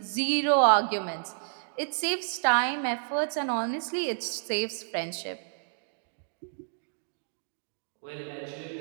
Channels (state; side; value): silent; left; digital silence